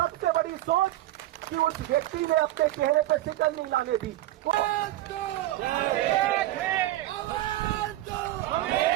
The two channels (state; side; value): quieter; left; 15.2 dB